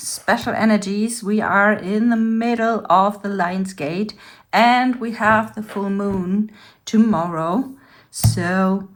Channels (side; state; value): both; identical; correlation 1.00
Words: energies. We are in the middle of the Lion's Gate and we have the full moon tomorrow. So